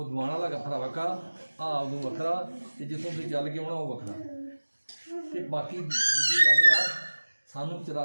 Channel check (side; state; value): both; inverted; correlation -1.00